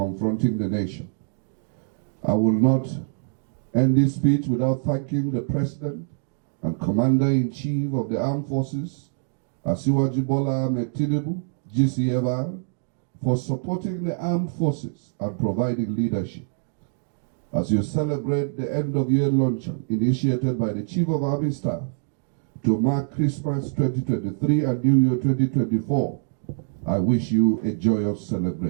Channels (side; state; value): left; silent; digital silence